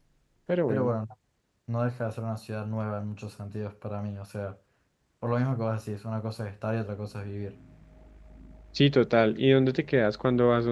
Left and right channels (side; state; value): both; identical; correlation 1.00